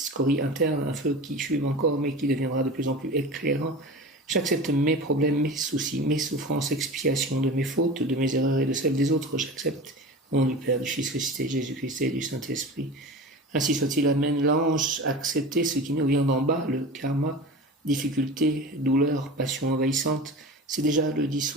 internes, un feu qui fume encore mais qui deviendra de plus en plus éclairant. J'accepte mes problèmes, mes soucis, mes souffrances, expiation de mes fautes, de mes erreurs et de celles des autres, j'accepte. Au nom du Père, du Fils ressuscité, Jésus-Christ et du Saint-Esprit. Ainsi soit-il. Amen. L'ange acceptait ce qui nous vient d'en bas, le karma, difficulté, douleur, passion envahissante, c'est déjà le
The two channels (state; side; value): normal; both; correlation 0.33